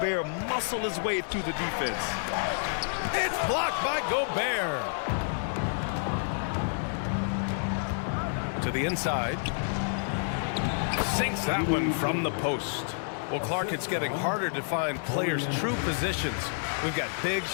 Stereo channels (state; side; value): silent; right; digital silence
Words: muscle his way through the defense. It's blocked by Gobert. To the inside. Sinks that one from the post. Well, Clark, it's getting harder to find players' true positions. We've got bigs